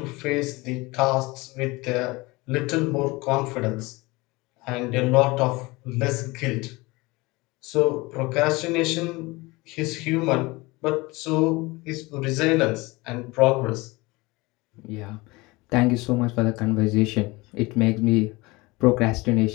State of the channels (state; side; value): quieter; right; 23.1 dB